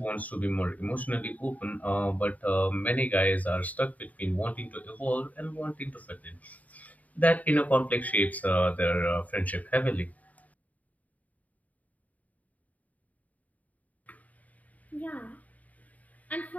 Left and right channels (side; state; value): right; late; 0.073 ms